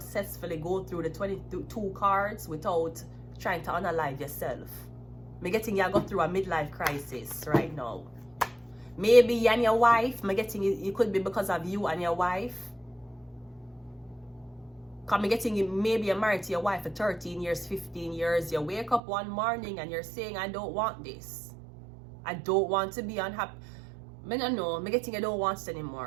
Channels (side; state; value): left; drops out; at 19.0 s